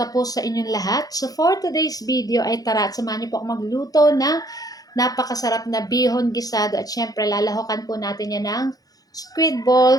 po sa inyong lahat? So for today's video ay tara at samahan niyo po ako magluto ng napakasarap na bihon gisado at syempre lalahokan po natin yan ng squid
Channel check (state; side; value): late; right; 0.18 ms